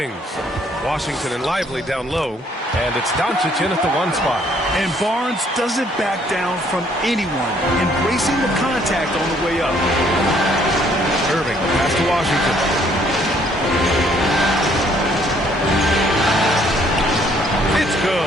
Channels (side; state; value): both; normal; correlation 0.64